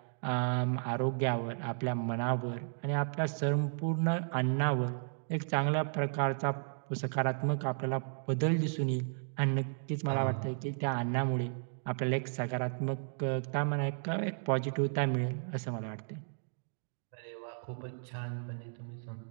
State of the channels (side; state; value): left; silent; digital silence